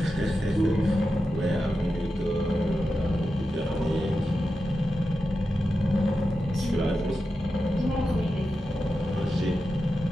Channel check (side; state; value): both; normal; correlation 0.90